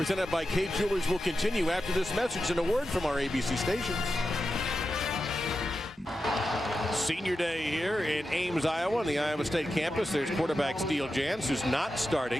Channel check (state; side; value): normal; both; correlation 0.90